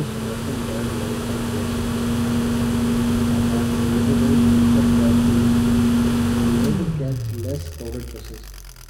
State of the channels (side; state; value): both; identical; correlation 1.00